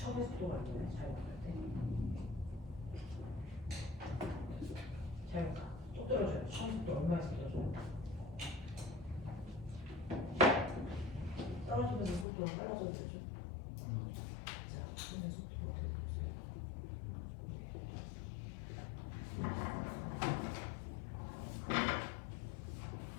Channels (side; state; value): right; drops out; at 12.2 s